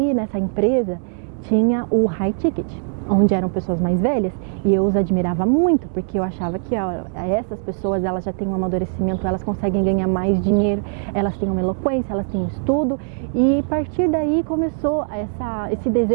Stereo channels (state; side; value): silent; left; 65 dB below the other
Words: nessa empresa tinha o high ticket, onde eram pessoas mais velhas, e eu os admirava muito, porque eu achava que essas pessoas, elas já têm um amadurecimento, elas conseguem ganhar mais dinheiro, elas têm uma eloquência, elas têm um estudo, e a partir daí começou esse